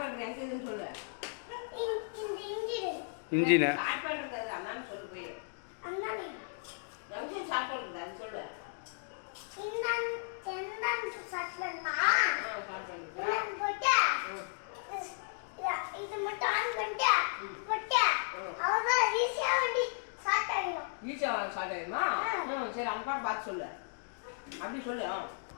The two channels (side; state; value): right; silent; digital silence